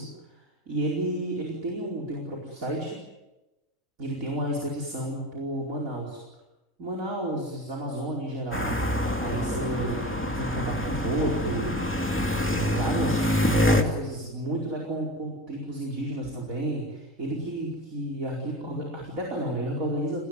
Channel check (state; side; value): normal; both; correlation 0.30